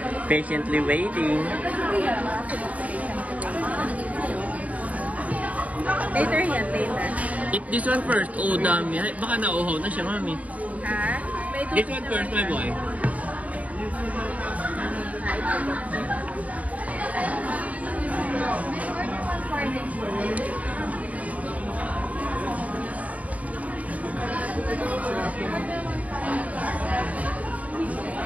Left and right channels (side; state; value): left; late; 0.070 ms